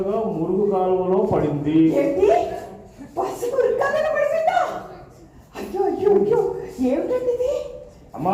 మురుగు కాలువలో పడింది. అయ్యో అయ్యో అయ్యో, ఏమిటండి? అమ్మా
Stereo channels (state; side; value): identical; both; correlation 1.00